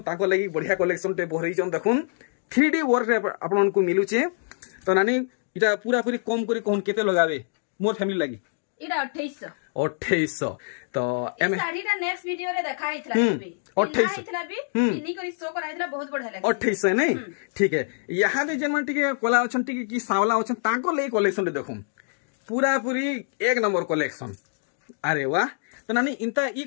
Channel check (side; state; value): right; silent; digital silence